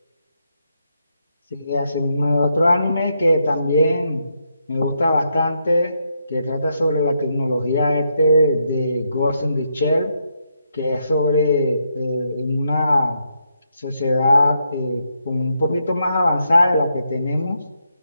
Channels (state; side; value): inverted; both; correlation -0.80